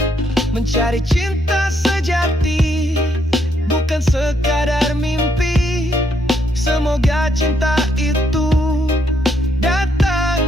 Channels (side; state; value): both; normal; correlation 0.73